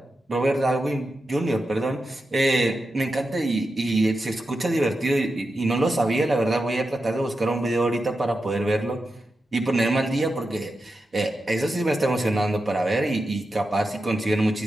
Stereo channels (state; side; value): normal; both; correlation 0.90